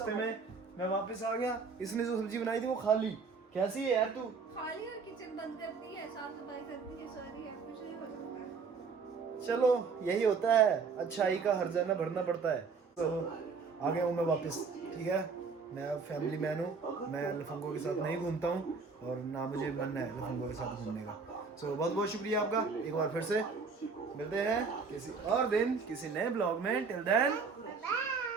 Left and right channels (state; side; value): quieter; left; 5.0 dB